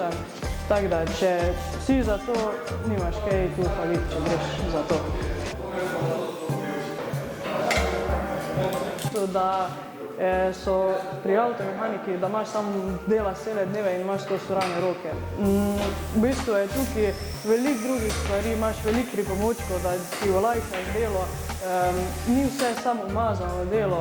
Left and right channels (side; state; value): both; identical; correlation 1.00